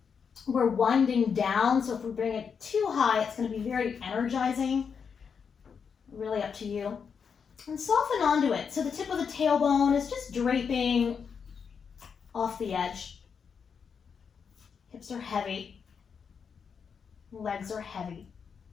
We're winding down, so if we bring it too high, it's going to be very energizing. Really up to you. And soften onto it. So the tip of the tailbone is just draping off the edge. Hips are heavy. Legs are heavy.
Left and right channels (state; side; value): quieter; right; 6.4 dB